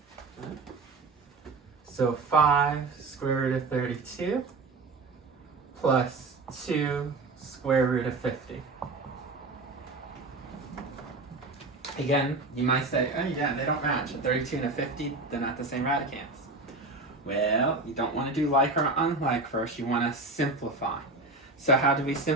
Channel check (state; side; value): quieter; left; 3.5 dB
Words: So 5 square root of 32 plus 2 square root of 50. Again, you might say, oh yeah, they don't match. A 32 and a 50, they're not the same radicands. Well, you don't want to do like or unlike first. You want to simplify. So how do we